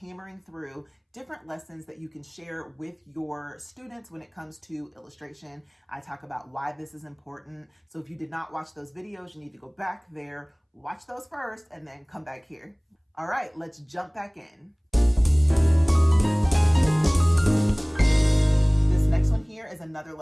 through different lessons that you can share with your students when it comes to illustration. I talk about why this is important. So if you did not watch those videos, you need to go back there, watch those first, and then come back here. All right, let's jump back in. Next one here is another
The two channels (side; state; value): both; identical; correlation 1.00